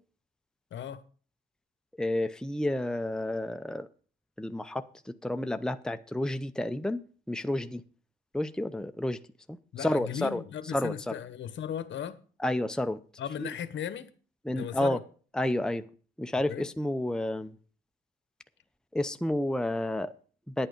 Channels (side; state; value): both; normal; correlation 0.89